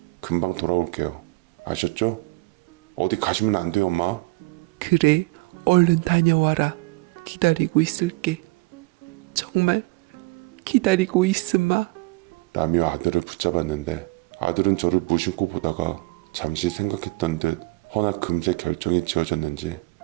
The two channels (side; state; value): left; quieter; 23.4 dB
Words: 금방 돌아올게요. 아셨죠? 어디 가시면 안 돼요, 엄마. 그래, 얼른 다녀와라. 기다리고 있을게. 정말 기다리고 있으마. 라며 아들을 붙잡았는데 아들은 저를 무심코 보다가 잠시 생각했던 듯 허나 금세 결정이 지어졌는지